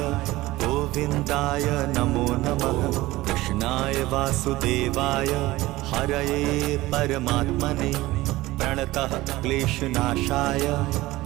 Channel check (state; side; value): quieter; left; 18.4 dB